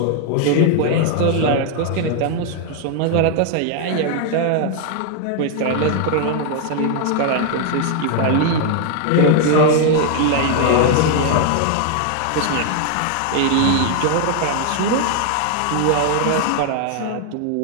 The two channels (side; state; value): both; different; correlation 0.00